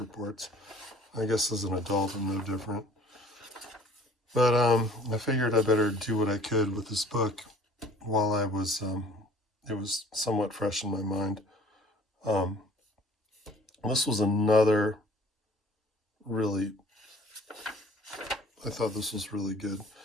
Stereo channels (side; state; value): both; normal; correlation 0.52